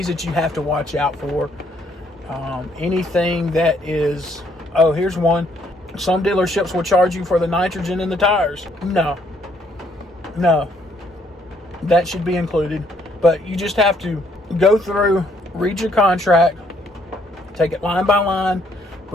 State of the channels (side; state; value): both; normal; correlation 0.68